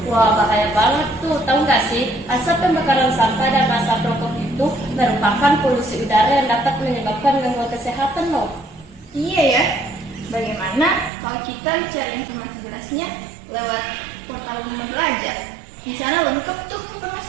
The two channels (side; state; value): left; drops out; at 11.1 s